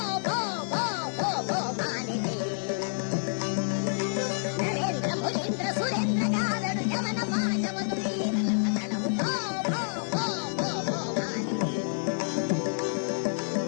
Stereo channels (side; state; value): right; silent; 56 dB below the other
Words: ಪೋ ಪೋ ಪೋ ಪೋ ಮಾನಿನಿ. ನರೇಂದ್ರ ಮುರೇಂದ್ರ ಸುರೇಂದ್ರ ಗಾದಡು ಯಮನ ಪಾಶವದು ಬೀರಲ ಸಕಲವು ಪೋ ಪೋ ಪೋ ಪೋ ಪೋ ಮಾನಿನಿ.